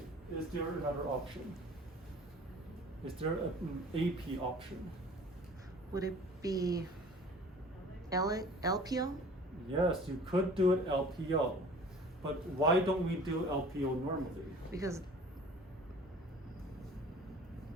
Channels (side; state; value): both; normal; correlation 0.46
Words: is there another option? Is there an AP option? Would it be LPO? Yes, you could do it LPO, but why don't we do LPO normally? Because